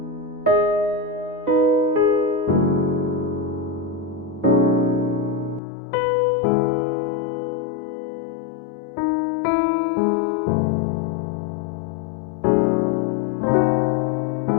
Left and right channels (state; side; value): drops out; right; at 5.6 s